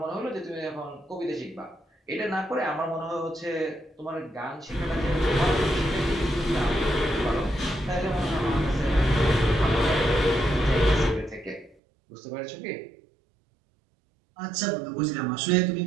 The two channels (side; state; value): left; drops out; at 11.8 s